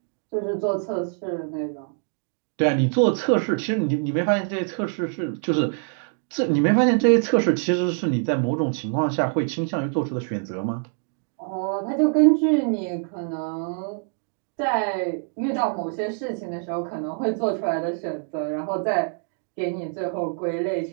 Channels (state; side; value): silent; left; 58 dB below the other